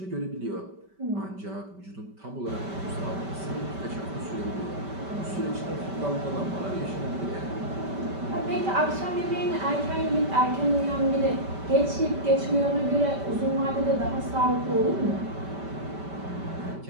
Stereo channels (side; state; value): left; late; 5.1 ms